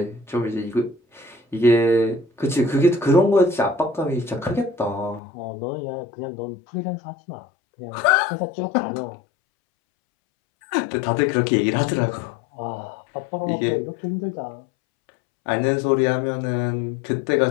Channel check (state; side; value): drops out; right; at 5.2 s